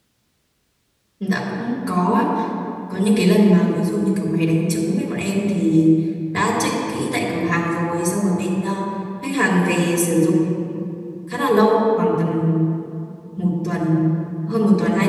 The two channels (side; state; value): both; identical; correlation 1.00